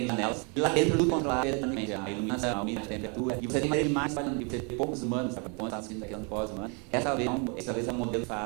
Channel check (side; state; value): left; quieter; 35.0 dB